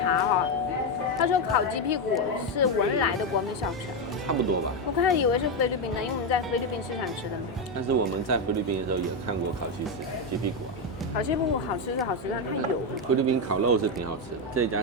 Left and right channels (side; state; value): both; normal; correlation 0.07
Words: 哈，他说烤鸡屁股是文莱的国民小吃。差不多吧。我开始以为是菲律宾的，因为我们在菲律宾市场吃的。但是我们在菲律宾的时候也看过烤鸡屁股啊。烤鸡屁股好吃是好吃，但它油。菲律宾烤肉是挺好吃的，这一家